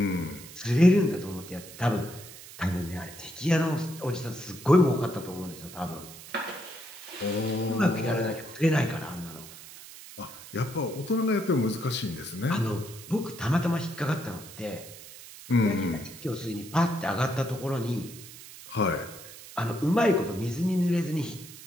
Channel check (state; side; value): noise; right; hiss, 16 dB below the sound